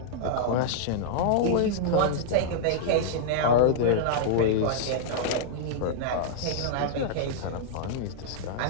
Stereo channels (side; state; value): both; different; correlation -0.02